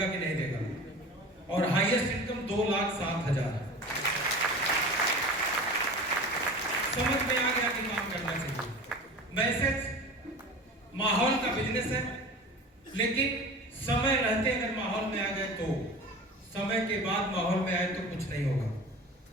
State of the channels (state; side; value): normal; both; correlation 0.36